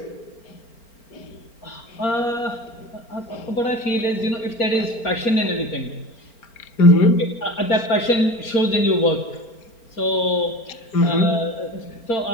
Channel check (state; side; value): late; right; 4.4 ms